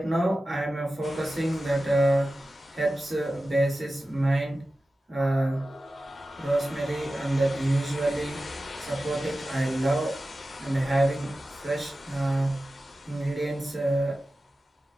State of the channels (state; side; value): normal; both; correlation 0.94